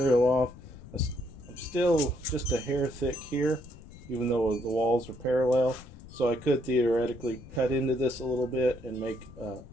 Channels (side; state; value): left; noise; rumble, 18 dB below the sound